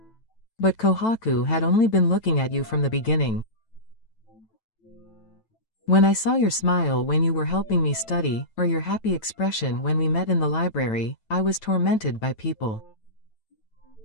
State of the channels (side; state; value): right; late; 9.0 ms